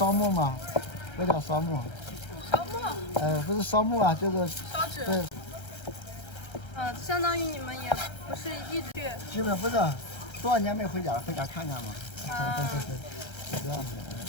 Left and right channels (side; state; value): right; late; 1.3 ms